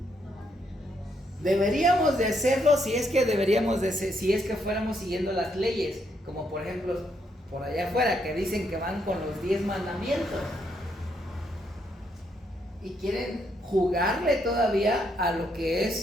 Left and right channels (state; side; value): normal; both; correlation 0.75